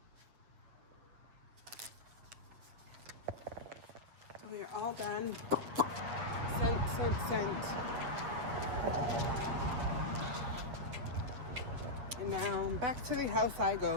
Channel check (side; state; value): left; late; 7.8 ms